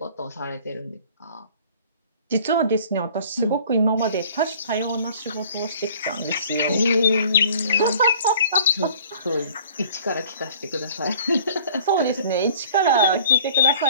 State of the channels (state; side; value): inverted; both; correlation -0.50